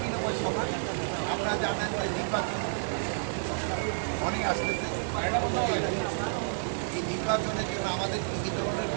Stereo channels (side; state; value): left; silent; digital silence